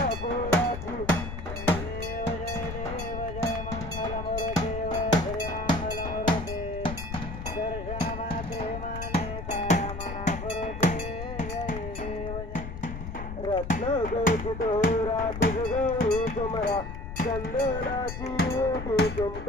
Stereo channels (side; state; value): left; noise; rumble, 8 dB below the sound